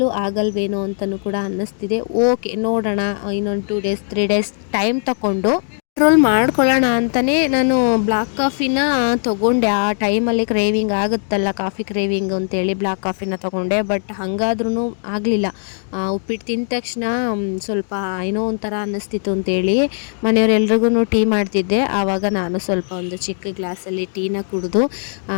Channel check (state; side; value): silent; right; 57 dB below the other